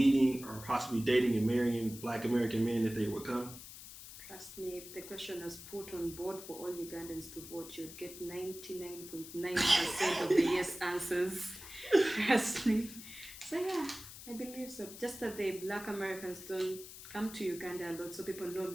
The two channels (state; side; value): noise; left; hiss, 14 dB below the sound